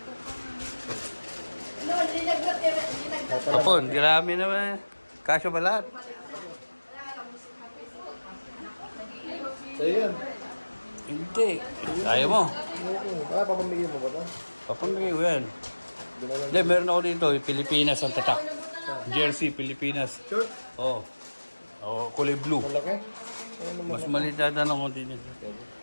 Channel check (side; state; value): both; inverted; correlation -1.00